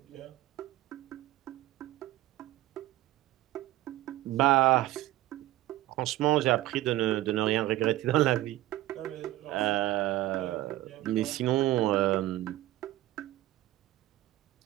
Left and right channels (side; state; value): left; quieter; 15.8 dB